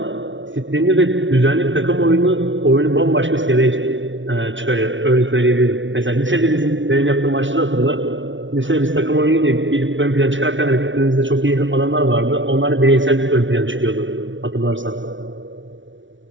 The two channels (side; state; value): left; late; 0.56 ms